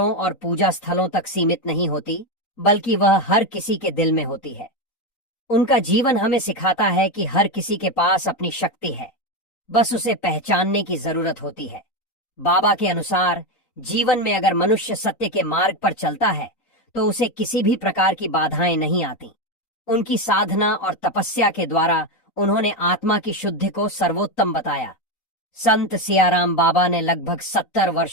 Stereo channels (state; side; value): late; right; 4.0 ms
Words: और पूजा स्थलों तक सीमित नहीं होती, बल्कि वह हर किसी के दिल में होती है। उनका जीवन हमें सिखाता है कि हर किसी के पास अपनी शक्ति है, बस उसे पहचानने की जरूरत होती है। बाबा के अनुसार जीवन में अगर मनुष्य सत्य के मार्ग पर चलता है तो उसे किसी भी प्रकार की बाधाएं नहीं आती। उनकी साधना और तपस्या के द्वारा उन्होंने आत्मा की शुद्धि को सर्वोत्तम बताया। संत सियाराम बाबा ने लगभग 70